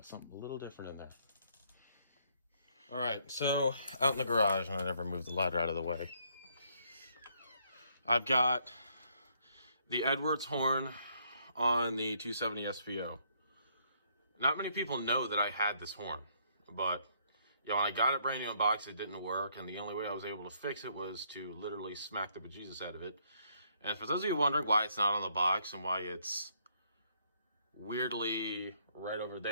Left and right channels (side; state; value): both; inverted; correlation -0.69